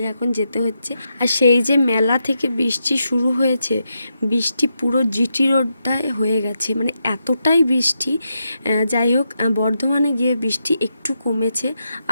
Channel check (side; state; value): both; inverted; correlation -0.84